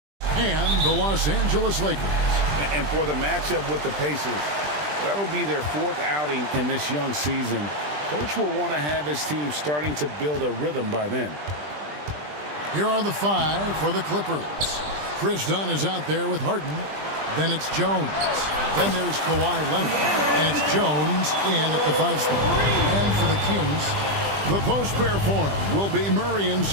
and the Los Angeles Lakers. And for the matchup with the Pacers, that'll be their 4th outing in this young season. Coach will want to have his team starting to build a rhythm by then. Here are the 5 for the Clippers. Chris Dunn is out there with Harden. Then it's Jones. Then there's Kawhi Leonard. And it's Jones in at the 5 spot. And for the Kings, the post pair form will be Murray and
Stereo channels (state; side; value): late; left; 20 ms